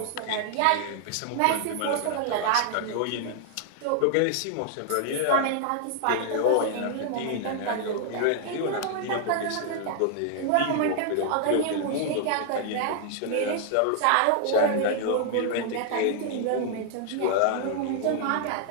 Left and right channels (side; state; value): both; different; correlation 0.00